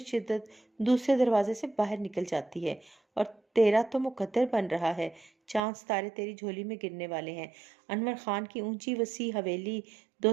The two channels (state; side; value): drops out; left; at 5.6 s